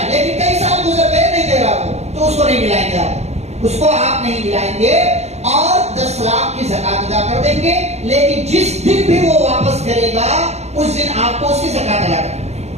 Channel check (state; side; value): late; left; 0.31 ms